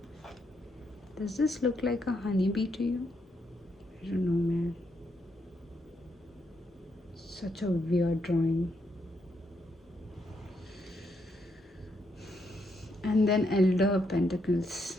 Does this look like a honeybee to you? I don't know, man. Such a weird drawing. And then Elder of Pentacles.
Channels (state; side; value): normal; both; correlation 0.78